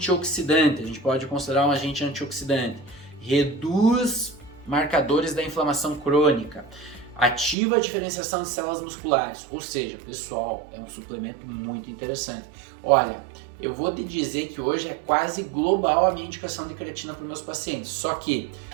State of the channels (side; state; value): left; drops out; at 7.6 s